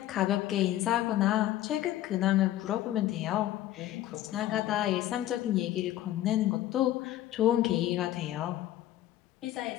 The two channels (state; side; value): quieter; right; 13.8 dB